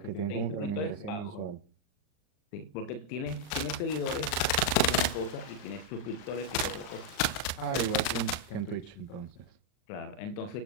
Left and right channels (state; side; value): late; right; 39 ms